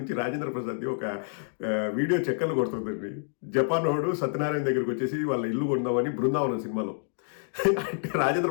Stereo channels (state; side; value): silent; right; digital silence